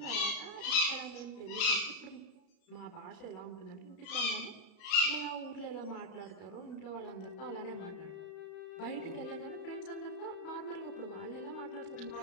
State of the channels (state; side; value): late; right; 33 ms